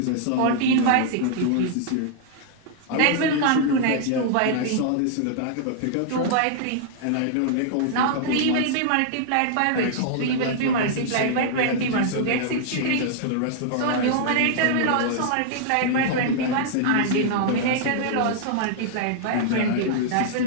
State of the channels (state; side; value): different; both; correlation -0.01